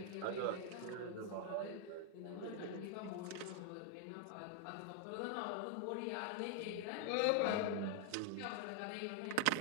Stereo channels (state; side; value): different; both; correlation 0.00